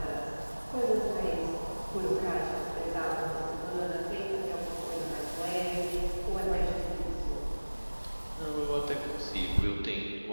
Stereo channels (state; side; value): inverted; both; correlation -1.00